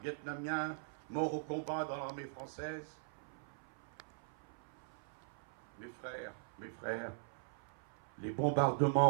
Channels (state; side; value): silent; left; 51 dB below the other